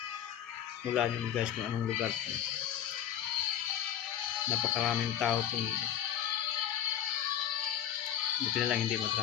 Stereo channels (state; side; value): quieter; right; 10.3 dB